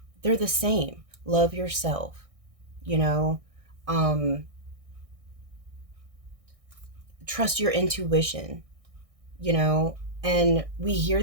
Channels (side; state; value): left; late; 1.6 ms